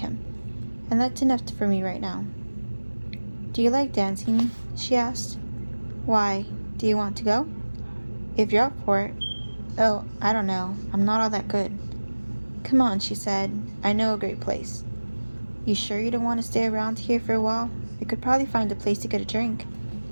And that's enough for me right now. Do you like dancing? She asked. Why? Do you want to go? If you're up for it. Oh, I don't know. I'm not all that good. Come on, she said. I know a great place. You sure you don't want to stay around here for a while? We could probably find a place to get a drink.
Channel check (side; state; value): both; inverted; correlation -1.00